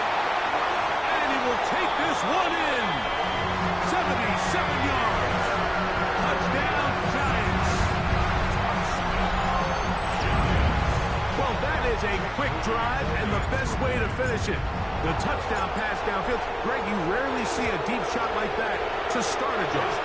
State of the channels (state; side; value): identical; both; correlation 1.00